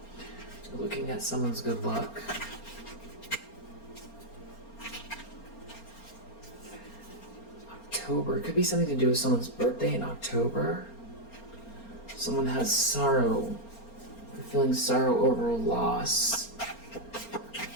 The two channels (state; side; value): late; right; 4.3 ms